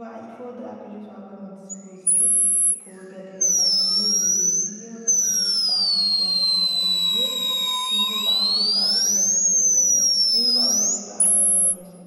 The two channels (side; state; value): both; identical; correlation 1.00